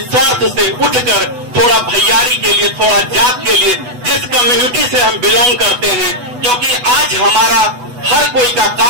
स्वार्थ से उठकर थोड़ा भैयारी के लिए, थोड़ा जात के लिए, जिस कम्युनिटी से हम बिलोंग करते हैं, क्योंकि आज हमारा हर कोई का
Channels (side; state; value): left; late; 8.1 ms